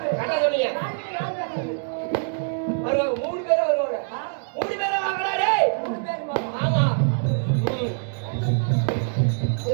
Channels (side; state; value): left; silent; digital silence